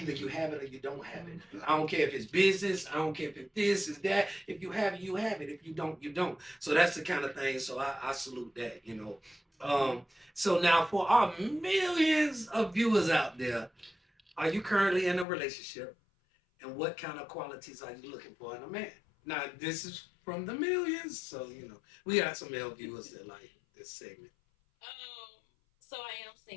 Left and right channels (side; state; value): right; drops out; at 15.2 s